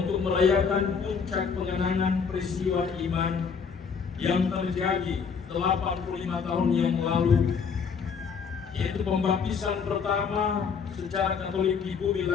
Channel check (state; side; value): quieter; right; 6.0 dB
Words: merayakan puncak pengenangan peristiwa iman yang terjadi 85 tahun yang lalu, yaitu pembaptisan pertama secara Katolik di bumi